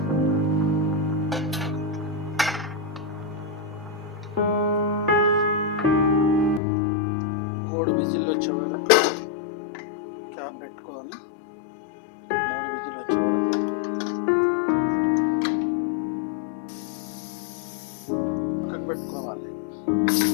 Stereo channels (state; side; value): drops out; right; at 6.6 s